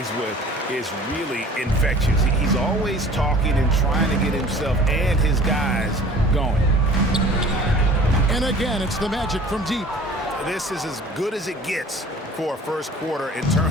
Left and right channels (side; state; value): both; normal; correlation 0.47